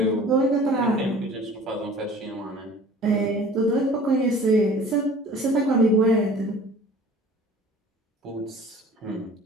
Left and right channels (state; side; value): normal; both; correlation 0.47